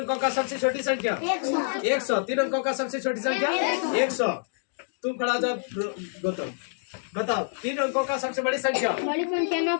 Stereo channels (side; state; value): right; silent; digital silence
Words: का सबसे छोटी संख्या 100। 3 अंकों का सबसे छोटी संख्या 100। तुम खड़ा जाओ गौतम, बताओ। 3 अंकों का सबसे बड़ी संख्या बड़ी संख्या